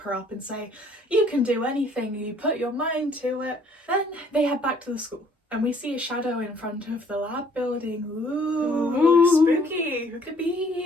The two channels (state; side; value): normal; both; correlation 0.61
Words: her up and say, you can do anything, you put your mind to it. Then they head back to the school, and we see a shadow in front of the lab building. Ooh, spooky, who could